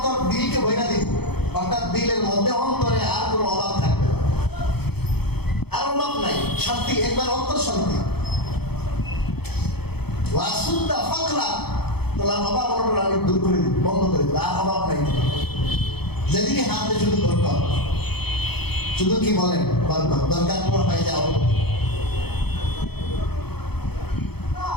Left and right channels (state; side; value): late; right; 0.97 ms